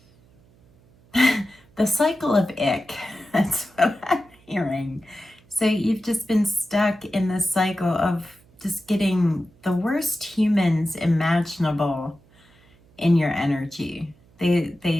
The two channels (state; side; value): noise; right; hum, 30 dB below the sound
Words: the cycle of ick. That's what I'm hearing. So you've just been stuck in this cycle of just getting the worst humans imaginable in your energy.